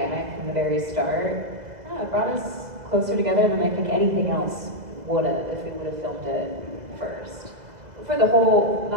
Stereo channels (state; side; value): late; left; 2.0 ms